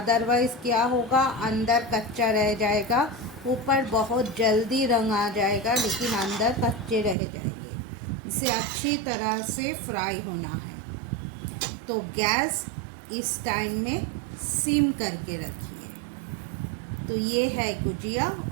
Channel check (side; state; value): left; drops out; at 7.2 s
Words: क्या होगा, अंदर कच्चा रह जाएगा, ऊपर बहुत जल्दी रंग आ जाएगा लेकिन अंदर कच्चे रह जाएंगे। इसे अच्छी तरह से फ्राई होना है। तो गैस इस टाइम में सिम करके रखिए। तो ये है गुजिया